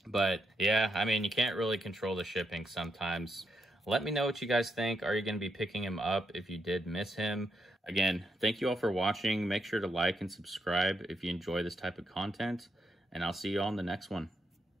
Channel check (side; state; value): both; normal; correlation 0.80